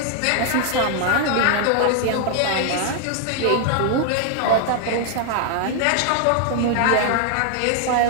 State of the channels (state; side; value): different; both; correlation 0.00